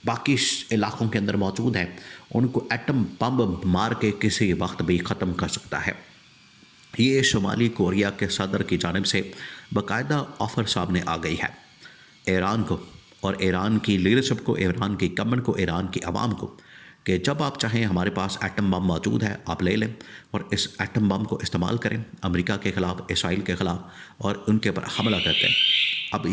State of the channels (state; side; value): identical; both; correlation 1.00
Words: باقی علاقوں کے اندر موجود ہیں، ان کو ایٹم بم مار کے کسی وقت بھی ختم کر سکتا ہے۔ یہ شمالی کوریا کے صدر کی جانب سے باقاعدہ آفر سامنے آ گئی ہے ایران کو، اور ایران کی لیڈرشپ کو، ایران کی گورنمنٹ کو، ایران کی عوام کو، کہ جب آپ چاہیں ہمارے پاس ایٹم بم موجود ہے، آپ لے لیں اور اس ایٹم بم کو استعمال کریں امریکہ کے خلاف، اسرائیل کے خلاف، اور ان کے اوپر حملہ کرتے ہیں۔ اب